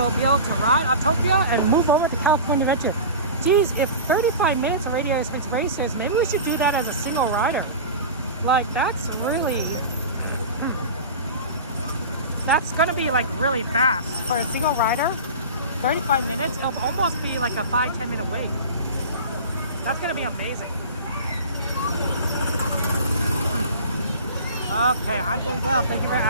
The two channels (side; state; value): both; inverted; correlation -0.33